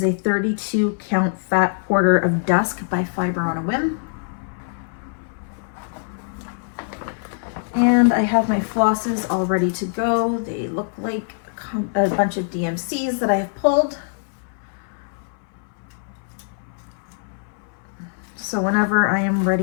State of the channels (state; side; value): silent; right; 62 dB below the other